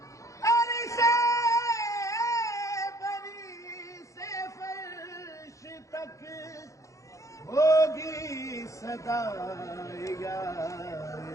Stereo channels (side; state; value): right; late; 0.15 ms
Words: ہوگی صدا یاری